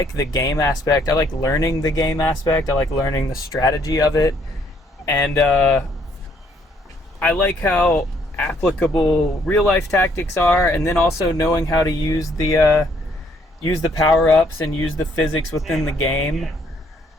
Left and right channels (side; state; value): both; normal; correlation 0.67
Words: game aspect. I like learning the game aspect. I like learning the strategy of it. And I like how applicable real life tactics are, and then also knowing how to use the power-ups and use the physics within the game.